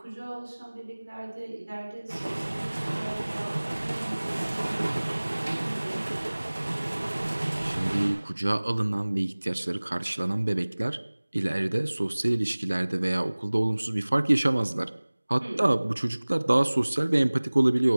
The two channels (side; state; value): both; inverted; correlation -1.00